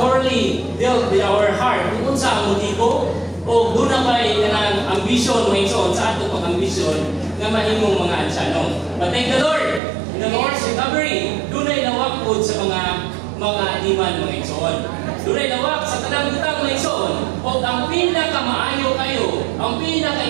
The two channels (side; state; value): left; drops out; at 9.8 s